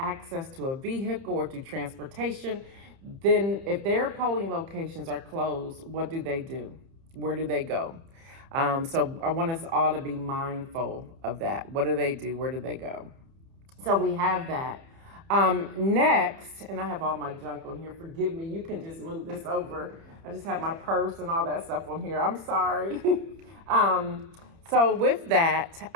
to a vehicle or to transportation, then if their polling locations are closed, what do they do? Where do they go? So I want us all to be mindful of that. What do they do? Where do they go? So we have that. Next, and I have all my junk on here. Forgive me. You can just move this over. I just have my purse and all that stuff on here. I'm sorry. So with that,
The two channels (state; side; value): late; left; 30 ms